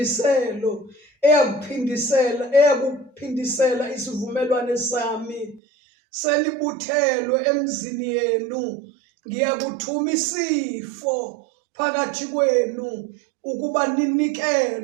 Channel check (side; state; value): left; drops out; at 5.6 s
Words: eyakuphindisela isivumelwano sami selibuthelwe emzini yenu. Ngiyakuthuma isifo phakathi kwenu ukuba